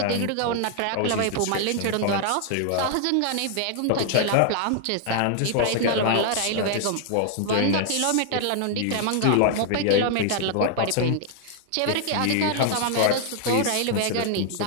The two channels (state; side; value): different; both; correlation 0.00